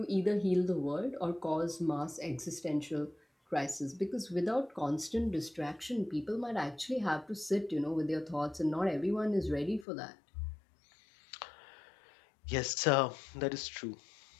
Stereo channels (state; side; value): drops out; right; at 9.9 s